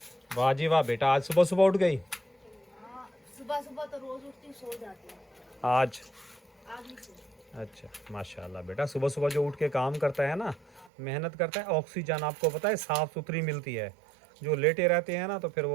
है। वाह जी वाह बेटा, आज सुबह सुबह उठ गई? सुबह सुबह तो रोज़ उठती सो जाती है, आज नहीं सो। अच्छा माशाल्लाह बेटा, सुबह सुबह जो उठ के काम करता है ना, मेहनत करता है, ऑक्सीजन आपको पता है साफ़ सुथरी मिलती है। जो लेटे रहते हैं ना तो फिर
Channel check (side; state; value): left; drops out; at 10.9 s